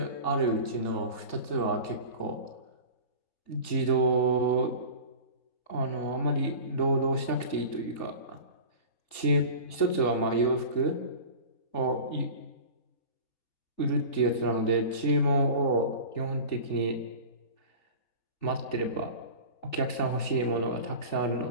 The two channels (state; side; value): late; right; 3.4 ms